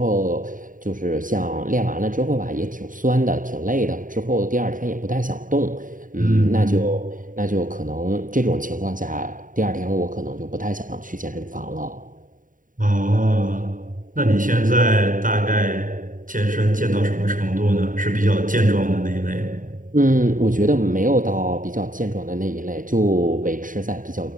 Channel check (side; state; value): left; late; 0.39 ms